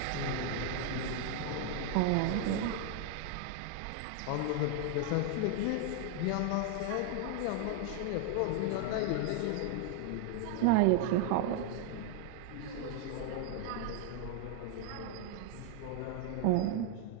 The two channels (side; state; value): both; different; correlation 0.00